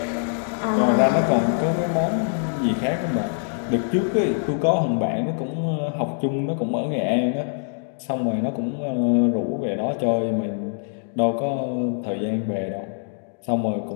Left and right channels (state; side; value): silent; right; digital silence